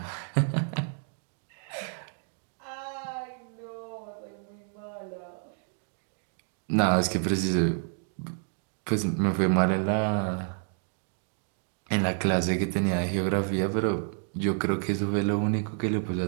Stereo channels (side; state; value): left; silent; 58 dB below the other